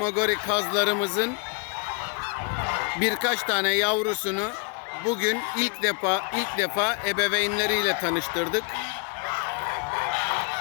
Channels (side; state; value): right; quieter; 35.9 dB